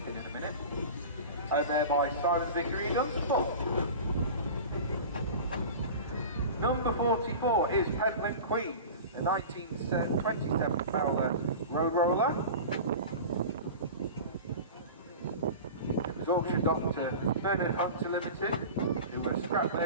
in a minute. There by Simon Vickery in Dunstable. Number 44 is Peddling Queen, the 1927 Fowler Road Roller. It was auctioned off to Bernard Hunter Limited, who were scrap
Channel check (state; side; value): inverted; both; correlation -0.34